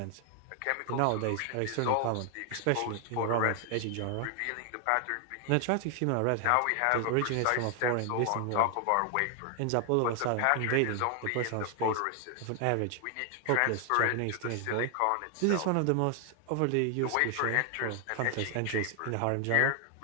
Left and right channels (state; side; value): different; both; correlation 0.00